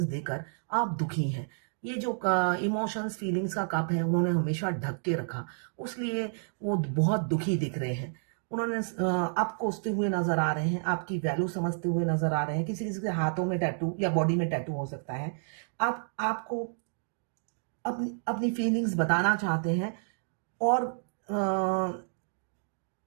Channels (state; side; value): silent; left; digital silence